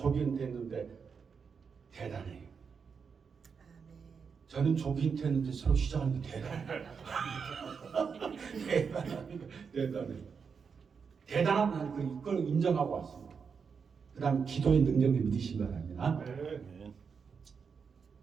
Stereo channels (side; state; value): left; quieter; 6.0 dB